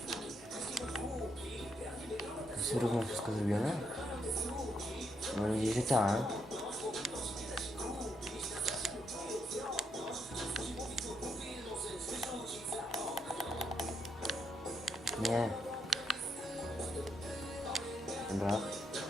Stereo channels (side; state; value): both; normal; correlation 0.78